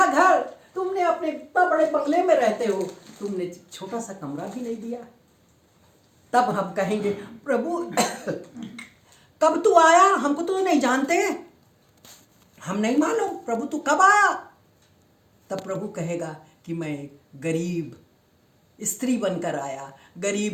घर, तुमने अपने इतना बड़े बंगले में रहते हो, तुमने छोटा सा कमरा भी नहीं दिया। तब हम कहेंगे प्रभु कब तू आया, हमको तो नहीं जानते, हम नहीं मालूम प्रभु तू कब आया। तब प्रभु कहेगा कि मैं गरीब स्त्री बनकर आया,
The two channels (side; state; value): both; identical; correlation 1.00